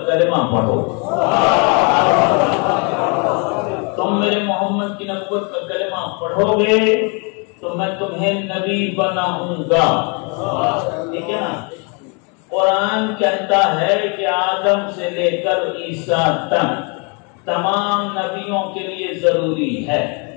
کلمہ پڑھو. تم میرے محمد کی نبوت کا کلمہ پڑھو گے تو میں تمہیں نبی بناؤں گا. ٹھیک ہے نا؟ قرآن کہتا ہے کہ آدم سے لے کر عیسیٰ تک تمام نبیوں کے لیے ضروری ہے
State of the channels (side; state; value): right; quieter; 34.4 dB